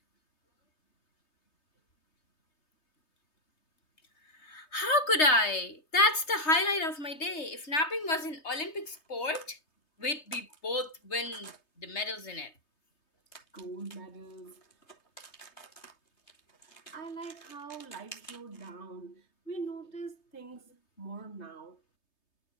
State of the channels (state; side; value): late; right; 3.3 ms